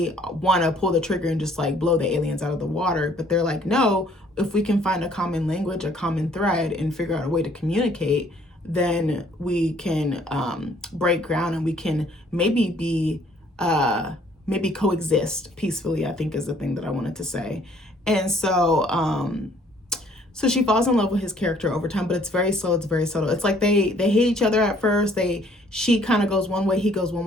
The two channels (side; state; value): both; normal; correlation 0.61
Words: want to pull the trigger and just like blow the aliens out of the water. But they're like, no, if we can find a common language, a common thread, and figure out a way to communicate, then we can break ground, and we can maybe coexist peacefully, I think is the thing that I wanted to say. And so so she falls in love with his character over time, but it's very slow, it's very subtle. It's like they hate each other at first. She kind of goes one way, he goes one